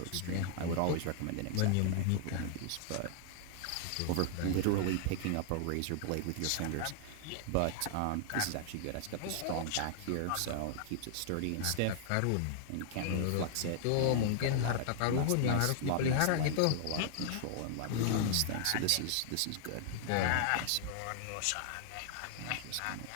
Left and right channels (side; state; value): both; different; correlation 0.00